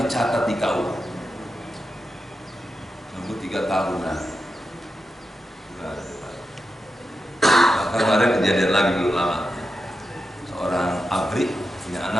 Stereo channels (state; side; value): normal; both; correlation 0.88